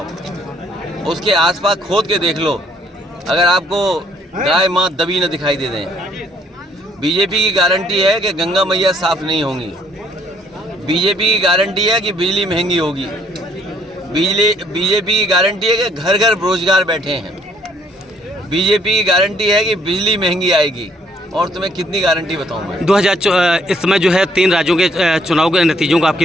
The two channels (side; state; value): both; normal; correlation 0.65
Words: उसके आसपास खोद के देख लो, अगर आपको गाय माँ दबी न दिखाई दे दें। बीजेपी की गारंटी है कि गंगा मैया साफ नहीं होंगी। बीजेपी की गारंटी है कि बिजली महंगी होगी। बीजेपी की गारंटी है कि घर घर बेरोजगार बैठे हैं। बीजेपी की गारंटी है कि बिजली महंगी आएगी। और तुम्हें कितनी गारंटी बताऊं मैं? 2000 इस समय जो है 3 राज्यों के चुनाव के नतीजों को आप